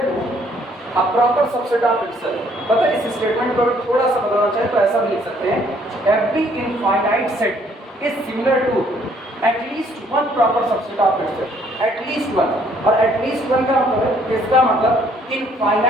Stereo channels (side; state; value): both; normal; correlation 0.64